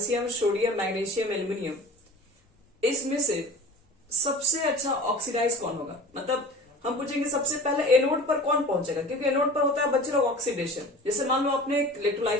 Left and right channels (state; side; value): normal; both; correlation 0.39